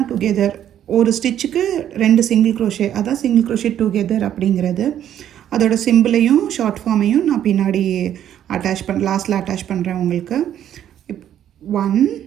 டுகெதர். ஒரு ஸ்டிச்சுக்கு 2 சிங்கிள் க்ரோஷே, அதான் சிங்கிள் க்ரோஷே டுகெதர் அப்படிங்கிறது. அதோட சிம்பிளையும் ஷார்ட் ஃபார்மையும் நான் பின்னாடி லாஸ்ட்டில் அட்டாச் பண்ணுறேன் உங்களுக்கு.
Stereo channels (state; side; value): quieter; left; 10.6 dB